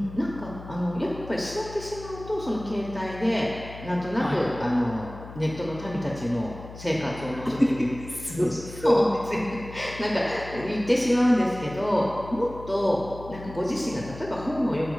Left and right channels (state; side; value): noise; left; hum, 14 dB below the sound